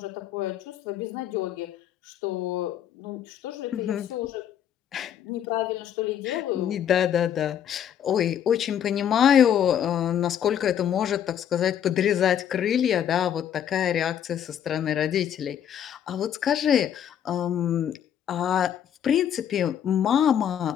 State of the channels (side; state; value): right; quieter; 9.5 dB